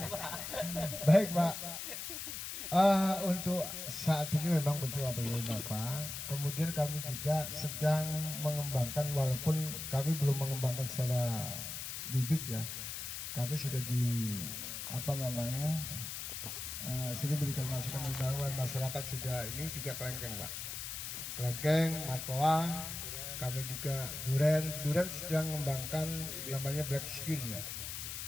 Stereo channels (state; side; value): noise; left; hiss, 6 dB below the sound